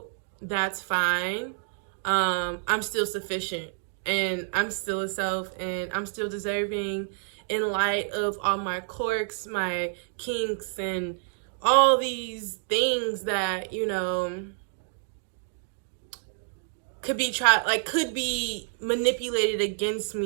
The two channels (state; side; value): silent; left; digital silence